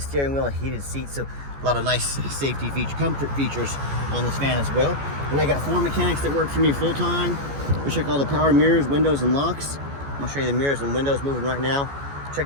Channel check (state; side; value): late; left; 14 ms